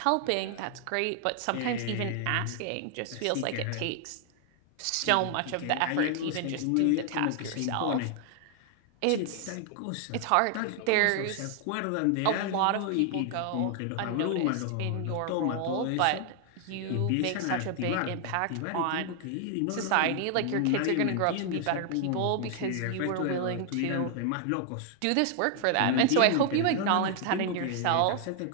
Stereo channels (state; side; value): different; both; correlation 0.00